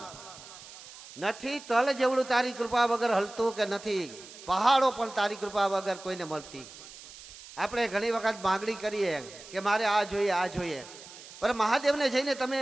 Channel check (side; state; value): right; noise; hiss, 17 dB below the sound